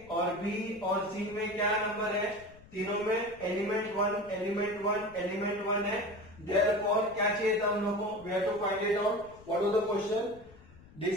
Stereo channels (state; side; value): noise; left; rumble, 22 dB below the sound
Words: और b और c में क्या नंबर है, तीनों में एलिमेंट 1 है। Therefore क्या चाहिए था हम लोग को? We have to find it out. What was the question?